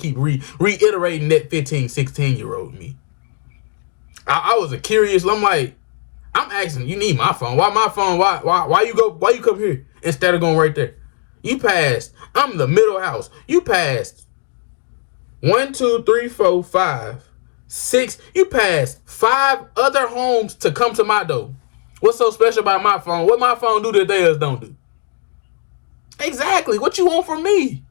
keep reiterating that 15, 16-year-old me. I was a curious. I'm like, I'm asking, you need my phone. Why my phone? Why you come here instead of going right there? You passed. I'm the middle house. You passed 1, 2, 3, 4, 5, 6. You passed 5 other homes to come to my door. What's so special about my phone? What my phone do that theirs don't do? Exactly. What you want from me?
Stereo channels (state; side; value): silent; right; digital silence